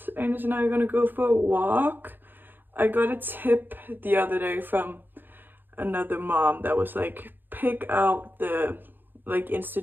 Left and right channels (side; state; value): left; late; 0.094 ms